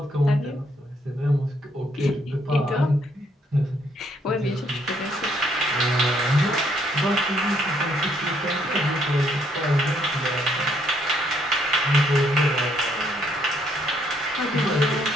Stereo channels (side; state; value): both; normal; correlation 0.70